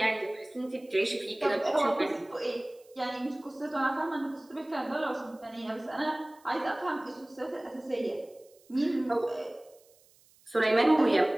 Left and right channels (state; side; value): noise; right; hiss, 30 dB below the sound